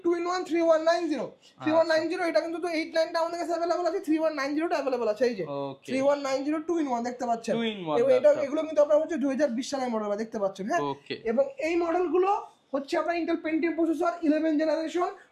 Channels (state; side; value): identical; both; correlation 1.00